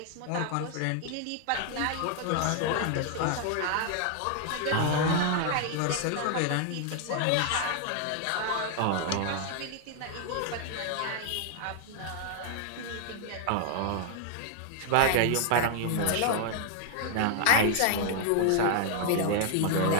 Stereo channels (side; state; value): both; different; correlation 0.00